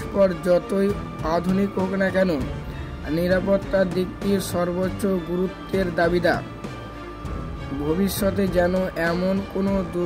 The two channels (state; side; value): identical; both; correlation 1.00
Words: যতই আধুনিক হোক না কেন, নিরাপত্তার দিকটি সর্বোচ্চ গুরুত্বের দাবিদার। ভবিষ্যতে যেন এমন কোনো